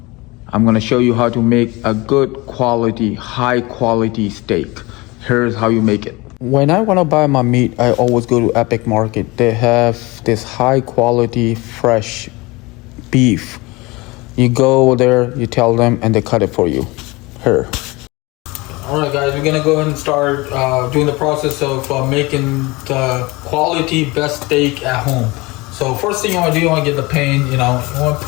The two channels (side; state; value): right; quieter; 23.3 dB